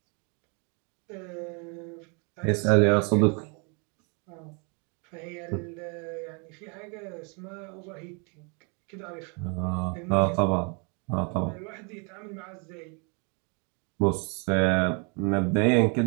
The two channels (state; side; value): quieter; left; 34.7 dB